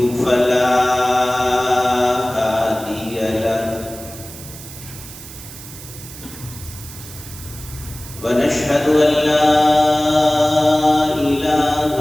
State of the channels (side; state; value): right; noise; hiss, 15 dB below the sound